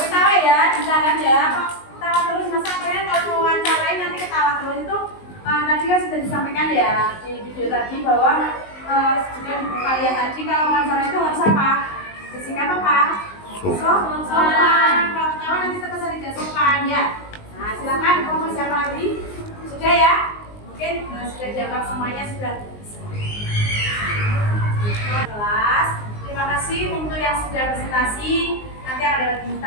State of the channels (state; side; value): late; right; 19 ms